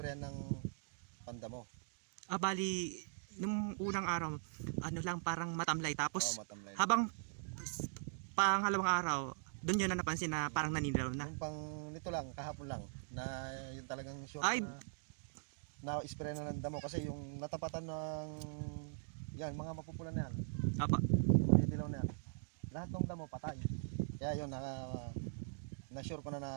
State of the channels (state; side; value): silent; left; digital silence